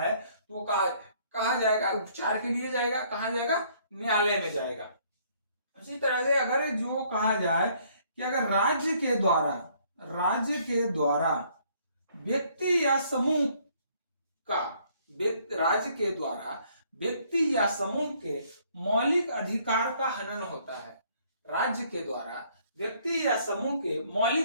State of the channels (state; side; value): inverted; both; correlation -0.63